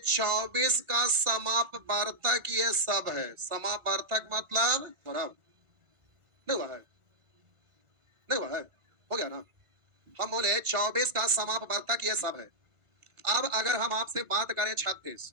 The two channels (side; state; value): left; late; 1.4 ms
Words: का समापवर्तक ये सब है। समापवर्तक मतलब बराबर नहीं हुआ है, नहीं हुआ है, हो गया ना। हम बोले 24 का समापवर्तक ये सब है। अब अगर हम आपसे बात करें 36,